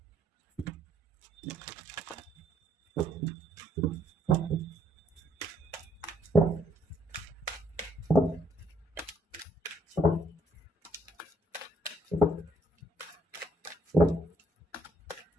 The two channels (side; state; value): both; normal; correlation 0.68